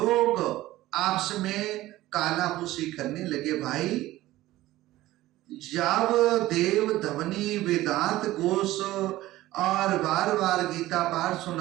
आपस में कानाफूसी करने लगे। भाई, जब देव धवनी वेदांत घोष और बार बार गीता पाठ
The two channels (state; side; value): quieter; left; 16.3 dB